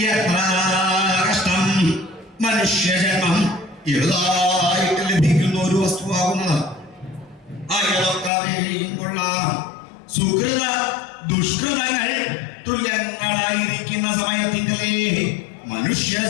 എത്ര കഷ്ടം. മനുഷ്യജന്മം എഴുതായിട്ട് ലഭിക്കുന്ന ഒരു വസ്തുവാകുന്നത്. അയാളൊക്കെയും കൊള്ളാം. സുഹൃത ദുഷ്കൃതങ്ങൾ തുല്യങ്ങളായിരിക്കുന്ന സമയത്തിങ്കലേ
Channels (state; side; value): drops out; right; at 8.3 s